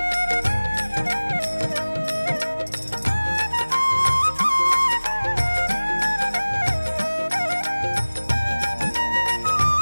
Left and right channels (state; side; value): inverted; both; correlation -1.00